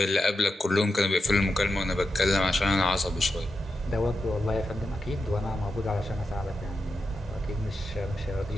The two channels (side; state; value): both; normal; correlation 0.88